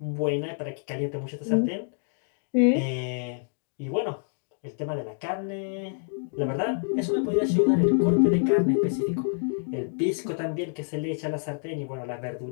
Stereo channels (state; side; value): silent; right; 60 dB below the other